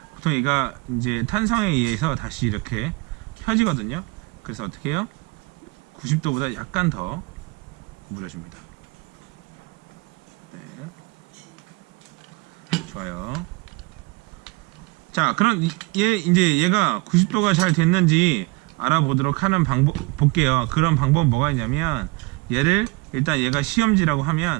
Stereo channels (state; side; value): quieter; left; 25.0 dB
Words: 보통 얘가 이제 탄성에 의해서 다시 이렇게 펴지거든요. 그래서 어떻게 해요? 90도보다 약간 더 구부려줍니다. 네. 좋아요. 자, 그럼 이제 얘가 90도가 잘 됐는지 알아보도록 하는 방법 볼게요. 그런 방법은 뭐가 있냐면 얘를 일단 얘가 시험지라고